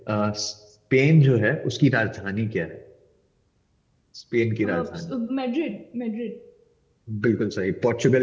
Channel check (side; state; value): both; identical; correlation 1.00